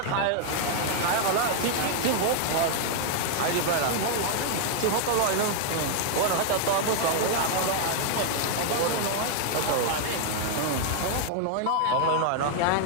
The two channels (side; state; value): both; different; correlation 0.00